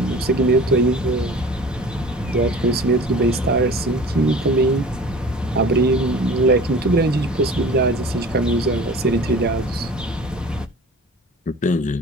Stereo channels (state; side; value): normal; both; correlation 0.42